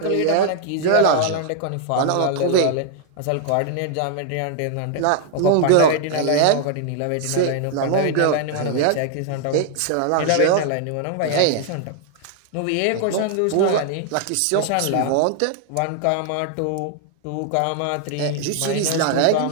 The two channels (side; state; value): both; different; correlation 0.00